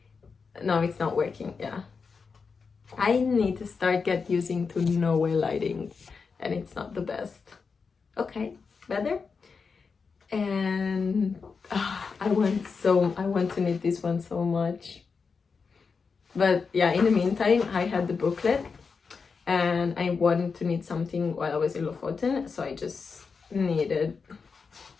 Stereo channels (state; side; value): quieter; right; 5.2 dB